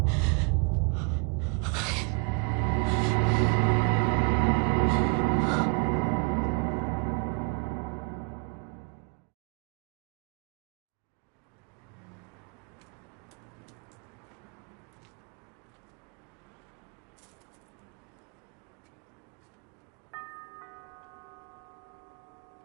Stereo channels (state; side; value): quieter; left; 34.3 dB